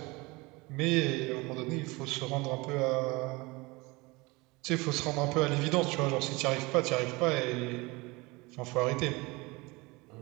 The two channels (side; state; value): left; quieter; 24.3 dB